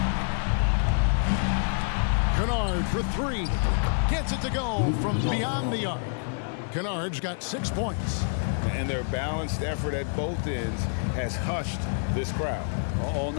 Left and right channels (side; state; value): right; silent; digital silence